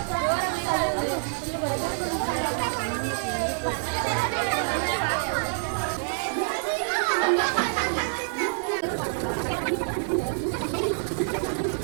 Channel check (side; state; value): left; silent; digital silence